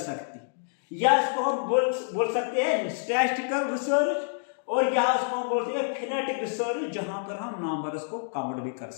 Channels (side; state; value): right; silent; digital silence